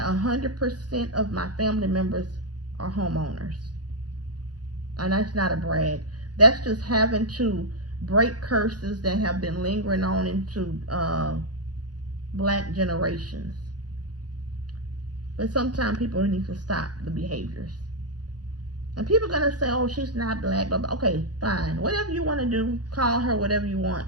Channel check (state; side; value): late; left; 0.69 ms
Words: of my family members are homeowners. And that's not a brag. That's just having to break curses that have been lingering on into black generations. But sometimes people need to stop the behaviors. And people are going to say, oh, she's not black. But okay, fine. Whatever you want to do, call her whatever you